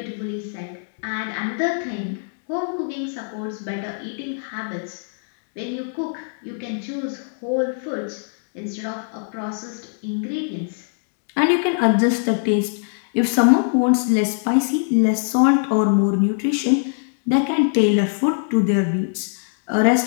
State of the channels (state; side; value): silent; right; digital silence